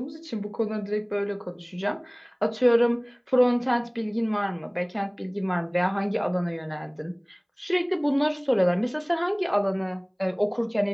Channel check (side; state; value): both; identical; correlation 1.00